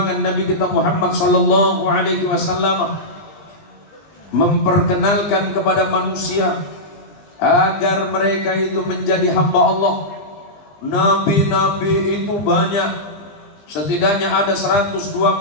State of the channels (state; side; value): late; right; 19 ms